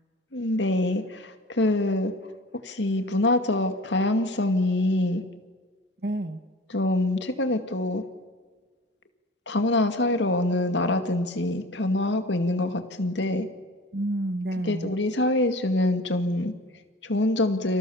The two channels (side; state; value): both; normal; correlation 0.41